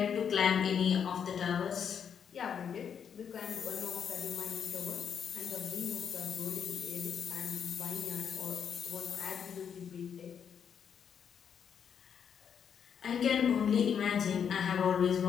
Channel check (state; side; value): quieter; right; 7.6 dB